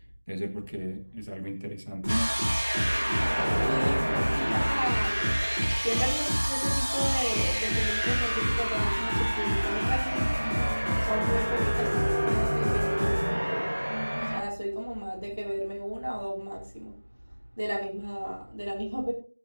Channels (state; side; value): inverted; both; correlation -1.00